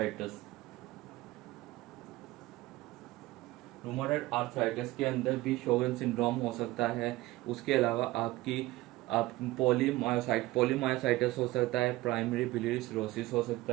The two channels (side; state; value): left; quieter; 18.5 dB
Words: रूमाटॉइड आर्थराइटिस के अंदर भी शोगन सिंड्रोम हो सकता है। उसके अलावा आप पोलीमायोसाइटिस हो सकता है, प्राइमरी बिलियरी सिरोसिस हो सकता